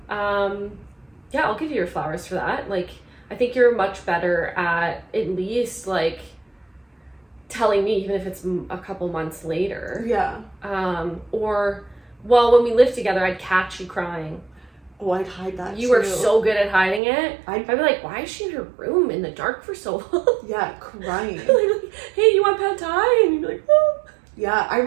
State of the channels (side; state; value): left; drops out; at 17.0 s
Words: Yeah, I'll give you your flowers for that. Like, I think you're much better at least, like, telling me, even if it's a couple months later. Yeah. Or, well, when we lived together, I'd catch you crying. Oh, I'd hide that You were so good at hiding it. I'd be like, why is she in her room in the dark for so long? Yeah, crying. Like, hey, you want pad thai? And you'd be like, oh. Yeah, I